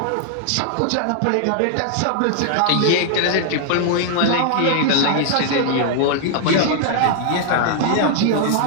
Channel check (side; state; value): both; different; correlation 0.00